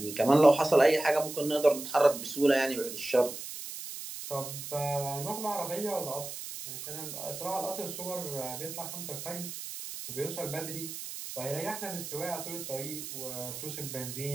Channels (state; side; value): noise; right; hiss, 9 dB below the sound